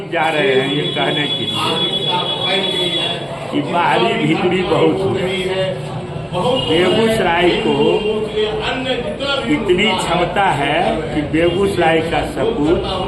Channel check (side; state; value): both; identical; correlation 1.00